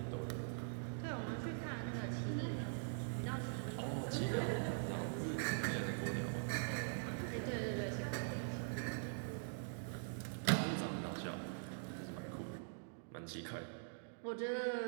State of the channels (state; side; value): silent; left; digital silence